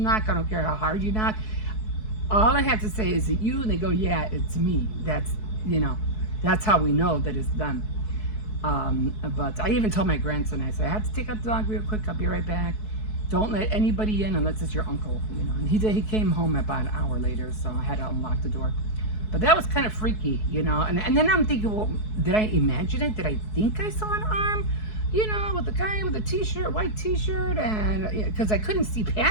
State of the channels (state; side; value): late; right; 4.7 ms